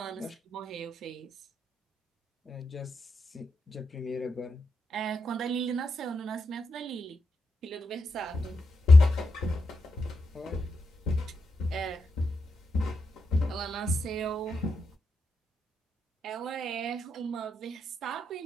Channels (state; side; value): normal; both; correlation 0.85